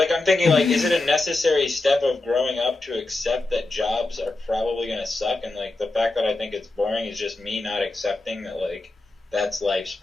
I'm thinking, like, is it a necessary step of growing up to accept that jobs are probably going to suck? And, like, the fact that I think it's boring is just me not accepting that, like, that's life's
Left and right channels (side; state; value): right; quieter; 3.1 dB